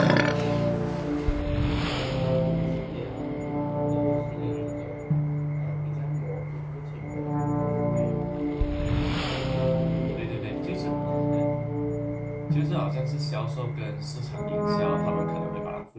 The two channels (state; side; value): identical; both; correlation 1.00